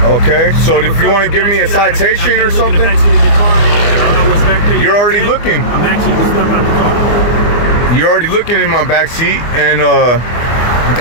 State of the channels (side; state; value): right; late; 24 ms